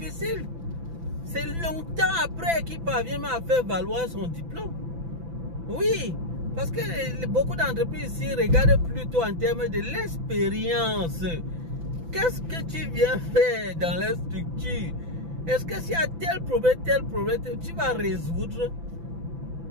C'est longtemps après qu'il parvient à faire valoir son diplôme. Oui, parce que beaucoup d'entreprises ici regardent plutôt en termes de l'expérience. Qu'est-ce que tu viens faire dans la structure? Est-ce que s'il y a tel problème, tu vas résoudre?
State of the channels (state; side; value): late; left; 6.0 ms